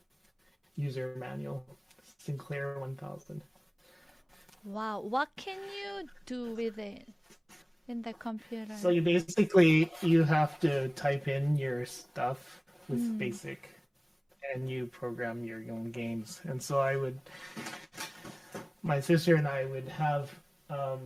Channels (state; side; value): identical; both; correlation 1.00